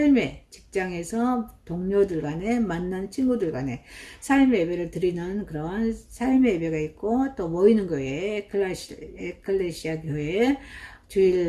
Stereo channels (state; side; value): identical; both; correlation 1.00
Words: 직장에서 동료들 간에 만난 친구들 간에 삶의 예배를 드리는 그런 삶의 예배가 있고, 또 모이는 교회, 에클레시아 교회,